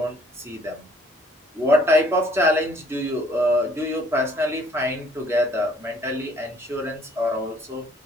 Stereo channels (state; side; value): normal; both; correlation 0.61